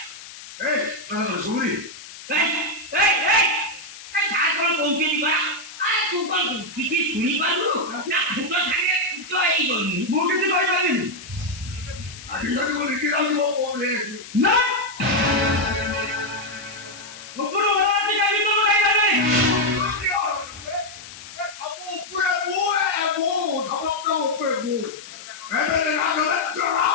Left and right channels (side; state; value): left; noise; hiss, 15 dB below the sound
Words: mana suri? সাত বড় কৌশলী করা আর তুই কল কিছু শুনি পারু না দুটো সাথে তো এই বলবি Mungkin sih baik lagi. Akhirnya aku mikir aku mau boleh. না ওপর ওরা কি গাড়ি তো গাড়ি গাড়ি Kamu perabu, kamu perabu. Emang nak